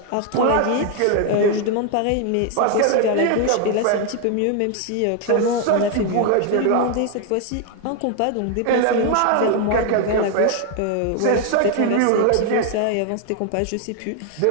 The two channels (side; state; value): both; different; correlation 0.01